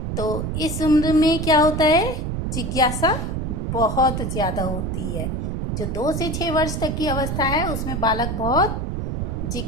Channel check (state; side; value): noise; right; rumble, 2 dB below the sound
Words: तो इस उम्र में क्या होता है? जिज्ञासा बहुत ज़्यादा होती है। जो 2 से 6 वर्ष तक की अवस्था है उसमें बालक बहुत